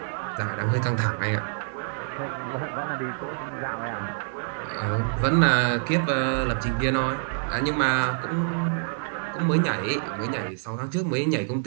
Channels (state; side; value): silent; left; digital silence